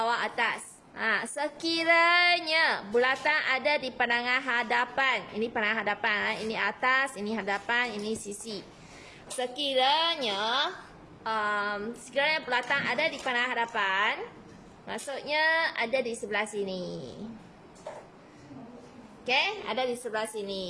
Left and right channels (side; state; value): both; identical; correlation 1.00